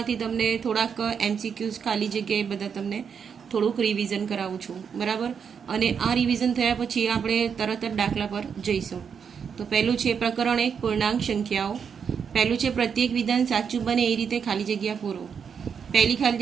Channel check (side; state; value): left; quieter; 6.8 dB